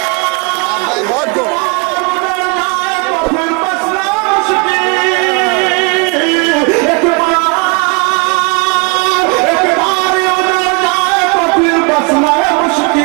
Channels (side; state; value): left; quieter; 31.1 dB